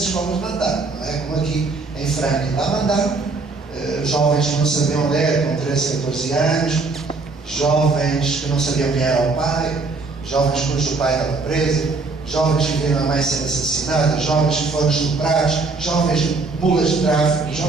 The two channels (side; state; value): left; quieter; 3.8 dB